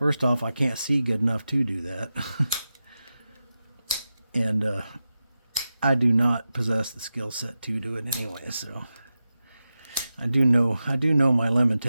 off, I can't see good enough to do that. And I do not possess the skill set to do it anyway, so I do know my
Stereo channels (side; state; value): both; inverted; correlation -0.92